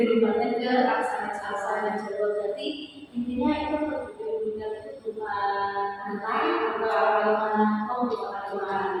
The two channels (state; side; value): identical; both; correlation 1.00